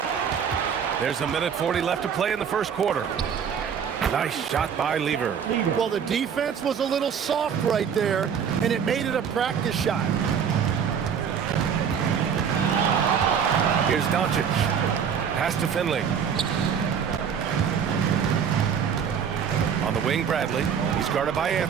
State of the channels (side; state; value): left; quieter; 7.5 dB